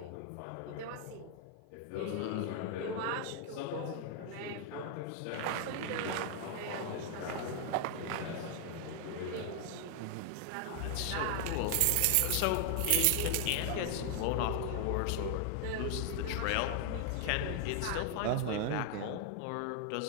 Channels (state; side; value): different; both; correlation 0.00